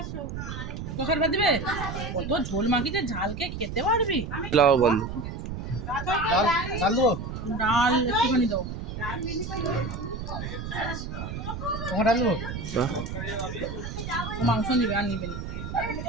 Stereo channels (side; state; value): right; noise; rumble, 6 dB below the sound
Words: তোকের ভাত দিবে? কত ঝোল মাখিতে, ঝালকে খেতে পারবি? বন্ধ ডাল একটুখানি দাও। মাংস নিবে আর নিবে না।